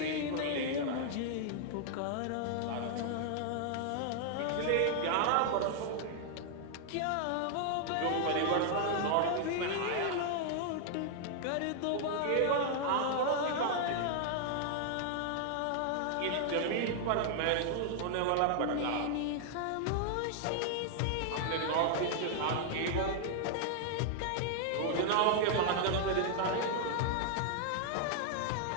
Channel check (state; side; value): different; both; correlation 0.00